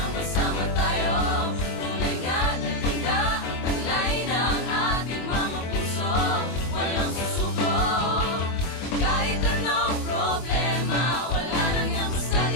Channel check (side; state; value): right; late; 24 ms